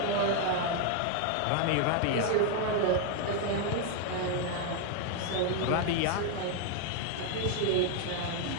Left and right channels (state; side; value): different; both; correlation 0.00